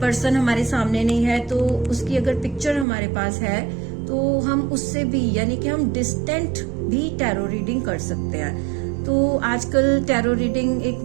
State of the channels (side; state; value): left; drops out; at 2.9 s